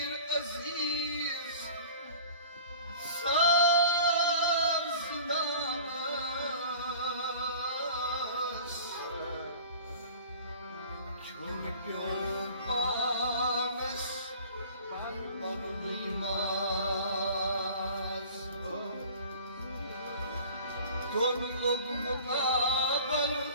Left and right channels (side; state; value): both; inverted; correlation -0.44